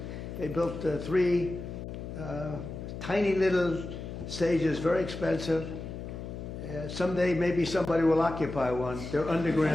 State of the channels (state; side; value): noise; left; hum, 8 dB below the sound